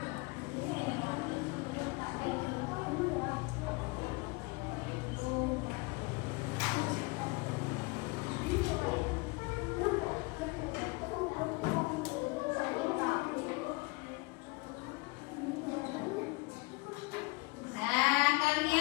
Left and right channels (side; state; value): right; quieter; 26.6 dB